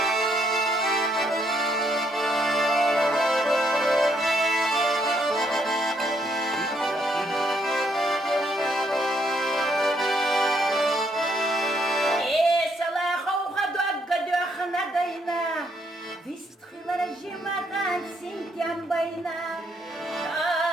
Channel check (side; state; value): both; normal; correlation 0.72